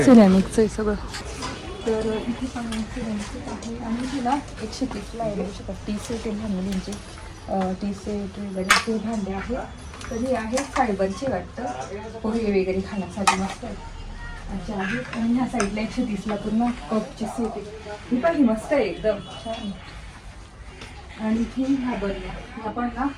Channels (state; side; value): identical; both; correlation 1.00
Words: सिरेमिकचं आहे सगळं. तर इथे पण सिरेमिक आहे. आणि तिला 130ला आहे, बघू शकता. टी सेट आहे मुलींचे, टी सेट वगैरे ते भांडे आहे. तर हे आहे फायबरचे वाटतं, पोहे वगैरे खाण्यासाठी मस्त आहे. अच्छा आहे. आणि ह्या साईडला 130ला पूर्ण कपची सेट आहे. ही पण ही मस्त आहे, एकदम छान. आणि इथे ह्या बरण्या पण ना,